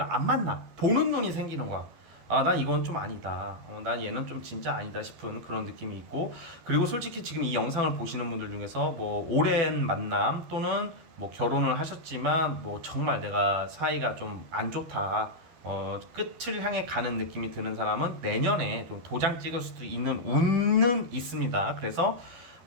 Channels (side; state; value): left; late; 12 ms